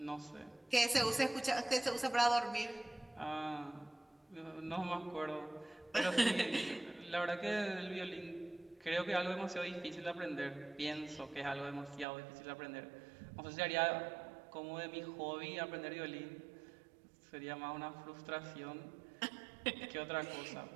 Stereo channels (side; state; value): left; drops out; at 12.1 s